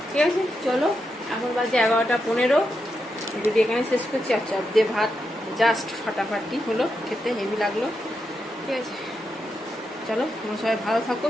ঠিক আছে, চলো, এখন বাজে 11টা 15। যদি এখানে শেষ করছি, আর চপ দিয়ে ভাত জাস্ট ফাটাফাটি হলো, খেতে হেভি লাগলো। ঠিক আছে, চলো, তোমরা সবাই ভালো থাকো,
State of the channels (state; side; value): normal; both; correlation 0.85